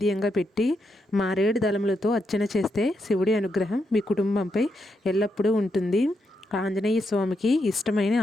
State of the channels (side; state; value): both; normal; correlation 0.82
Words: పెట్టి మారేడు దళములతో అర్చన చేస్తే శివుడి అనుగ్రహం మీ కుటుంబంపై ఎల్లప్పుడూ ఉంటుంది. ఆంజనేయ స్వామికి ఇష్టమైన